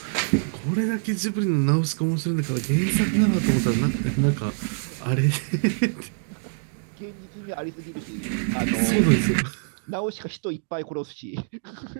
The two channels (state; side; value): silent; left; digital silence